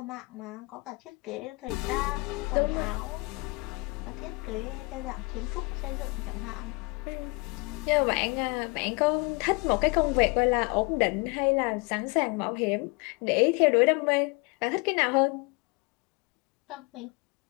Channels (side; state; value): right; quieter; 28.9 dB